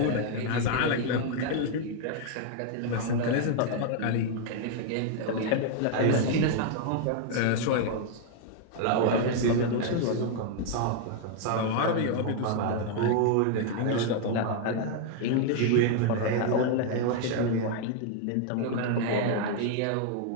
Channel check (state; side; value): different; both; correlation 0.00